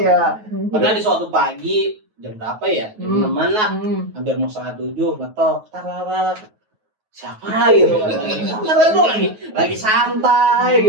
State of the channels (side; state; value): left; late; 9.3 ms